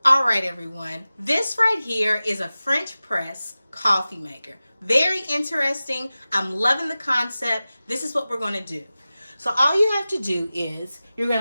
All right, everyone. This right here is a French press coffee maker. Very interesting. I'm loving the concept. This is what we're going to do. So all you have to do is you're going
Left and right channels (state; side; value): inverted; both; correlation -0.96